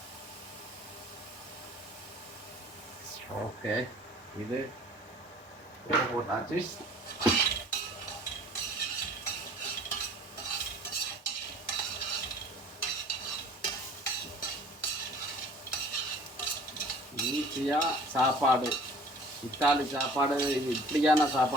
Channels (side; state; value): both; normal; correlation 0.48